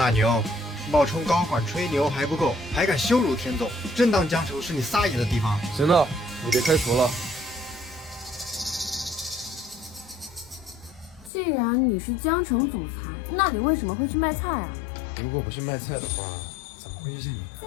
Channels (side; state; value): right; drops out; at 11.3 s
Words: 牛，冒充高管吹牛还不够，还敢羞辱天总，真当江城是你撒野的地方？行了，你别开除了。既然你是江城总裁，那你为什么会去卖菜啊？如果不是卖菜的话，怎么会遇见你？